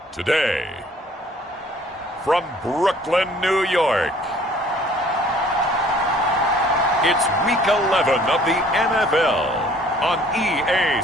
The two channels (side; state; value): both; normal; correlation 0.55